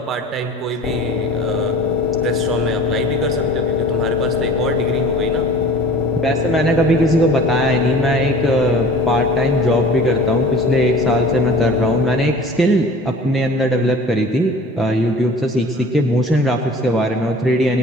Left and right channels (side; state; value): both; normal; correlation 0.43